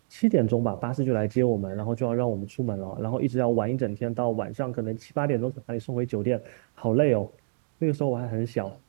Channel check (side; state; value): left; silent; digital silence